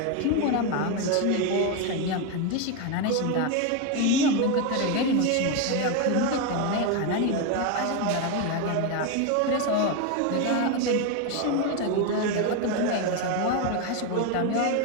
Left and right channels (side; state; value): both; different; correlation 0.02